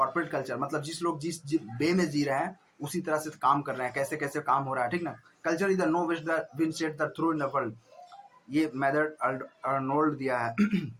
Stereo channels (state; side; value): identical; both; correlation 1.00